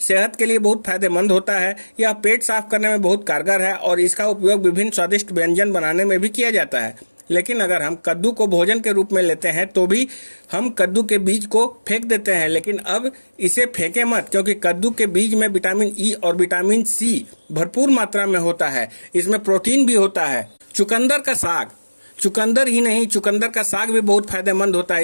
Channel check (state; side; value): inverted; both; correlation -1.00